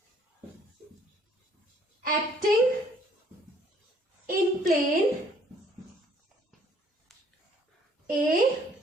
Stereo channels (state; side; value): normal; both; correlation 0.61